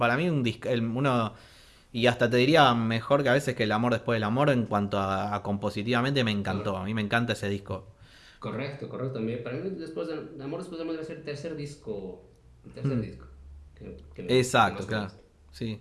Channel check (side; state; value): both; identical; correlation 1.00